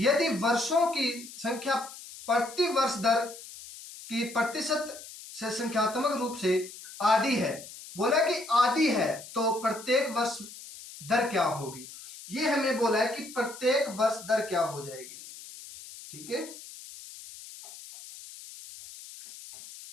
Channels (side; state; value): left; noise; hiss, 15 dB below the sound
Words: वर्षों की संख्या प्रति वर्ष दर की प्रतिशत से संख्यात्मक रूप से आधी है। बोला कि आधी है तो प्रत्येक वर्ष दर क्या होगी? ये हमें बोला है कि प्रत्येक वर्ष दर क्या हो जाएगी। ठीक है,